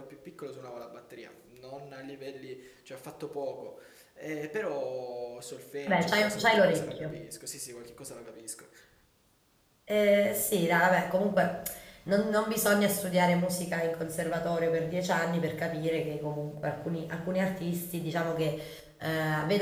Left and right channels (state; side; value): identical; both; correlation 1.00